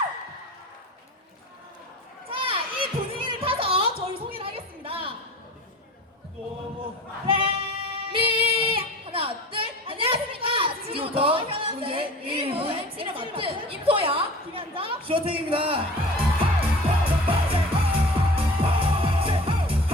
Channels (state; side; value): normal; both; correlation 0.39